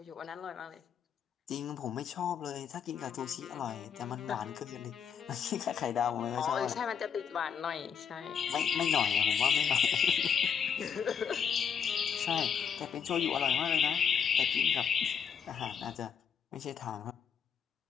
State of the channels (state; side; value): quieter; right; 7.5 dB